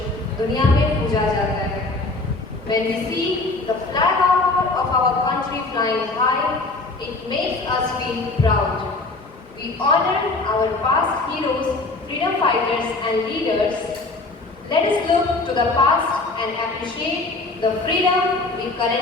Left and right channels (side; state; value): right; quieter; 3.3 dB